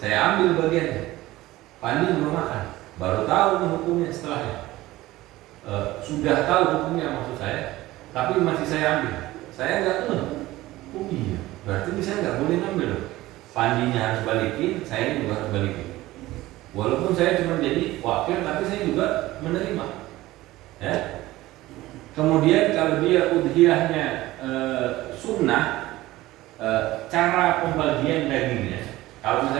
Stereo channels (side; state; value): left; quieter; 17.4 dB